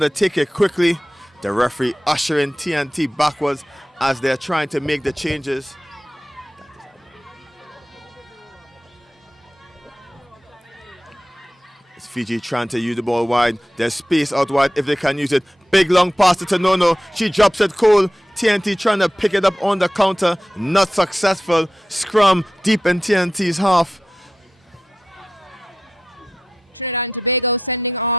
to take it quickly. The referee ushering TNT backwards as they're trying to make the changes. It's Fiji trying to use the ball wide. There's space out wide if they can use it. Big long pass to Tonono. She drops it cold. TNT trying to pick it up on the counter. Not successful. Scrum deep in TNT's half. Trinidad and Tobago sending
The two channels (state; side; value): normal; both; correlation 0.91